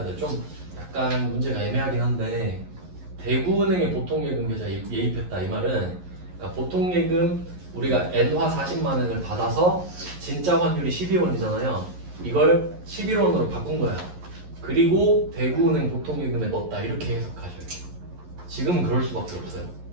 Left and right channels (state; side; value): late; left; 11 ms